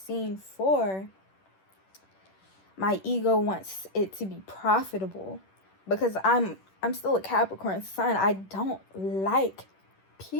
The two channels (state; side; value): late; right; 10 ms